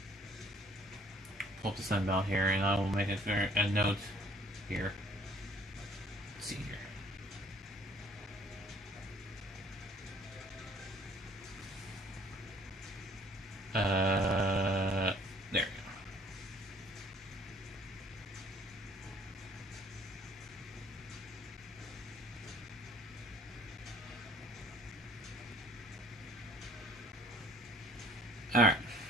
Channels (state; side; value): normal; both; correlation 0.56